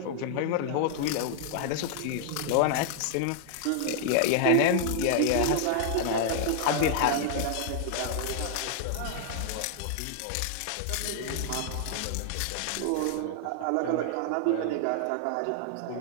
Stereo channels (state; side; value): different; both; correlation 0.00